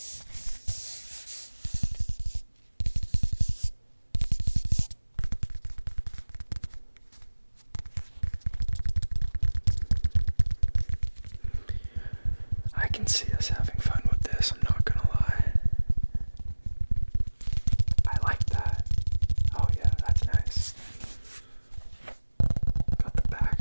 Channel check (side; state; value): both; inverted; correlation -1.00